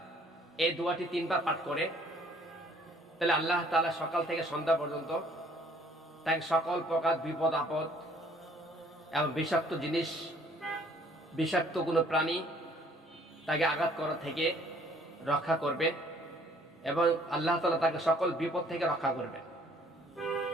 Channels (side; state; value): both; normal; correlation 0.59